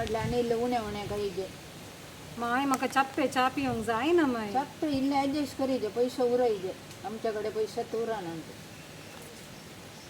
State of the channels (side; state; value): both; identical; correlation 1.00